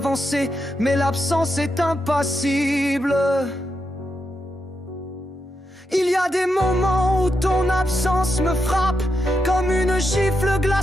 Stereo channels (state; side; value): normal; both; correlation 0.84